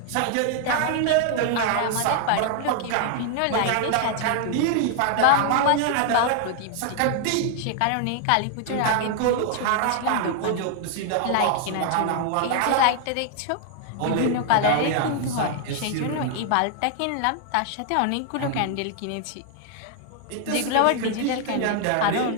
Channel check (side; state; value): both; different; correlation 0.00